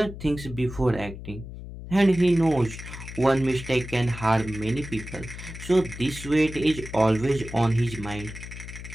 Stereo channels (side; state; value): left; noise; hum, 11 dB below the sound